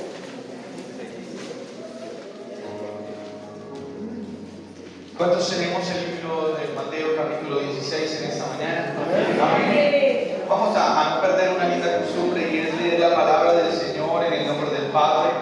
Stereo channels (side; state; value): both; identical; correlation 1.00